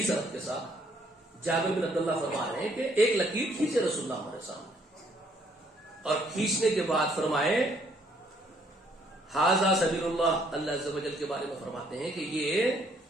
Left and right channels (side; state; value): both; normal; correlation 0.66